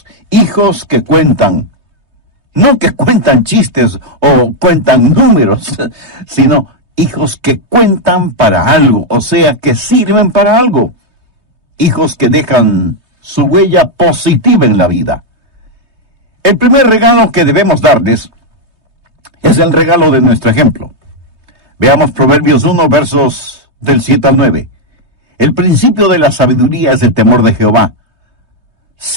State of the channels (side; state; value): left; late; 3.2 ms